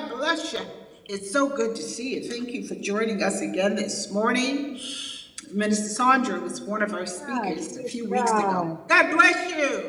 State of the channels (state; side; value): identical; both; correlation 1.00